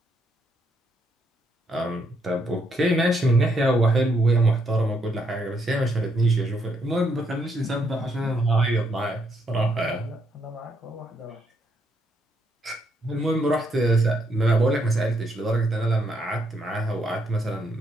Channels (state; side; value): normal; both; correlation 0.74